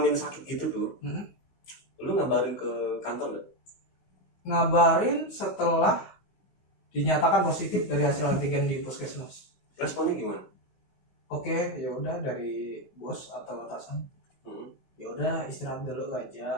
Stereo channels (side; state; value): right; late; 16 ms